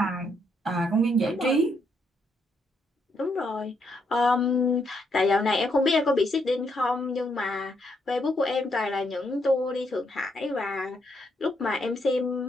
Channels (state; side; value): normal; both; correlation 0.77